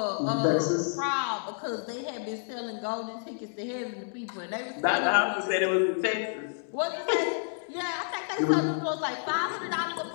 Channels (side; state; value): right; silent; digital silence